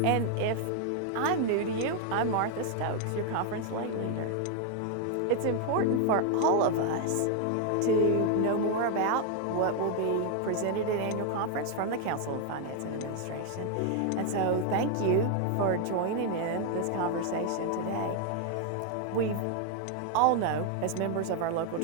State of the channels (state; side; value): different; both; correlation 0.00